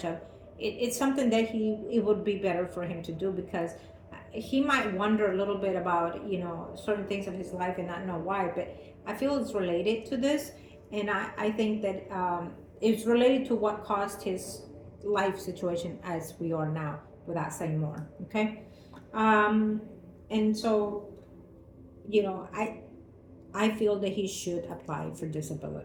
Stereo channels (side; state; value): both; identical; correlation 1.00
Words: of. It's something that it would be better for him to do, because he might wonder a little bit about certain things of his life and not know why. But I feel it's related to this, and I think that it's related to what caused his life situation as we are now, without saying more. Okay. And so I feel that he should apply for